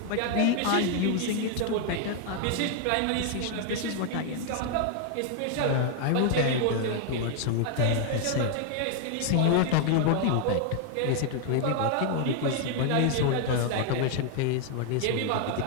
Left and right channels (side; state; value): both; different; correlation 0.00